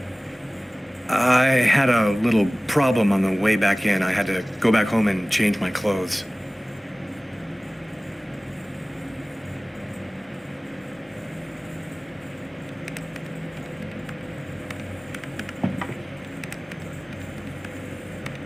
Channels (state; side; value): normal; both; correlation 0.98